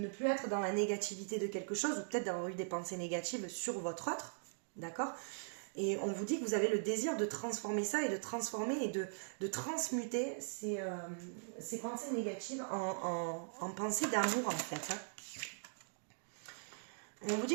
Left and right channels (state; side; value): silent; left; digital silence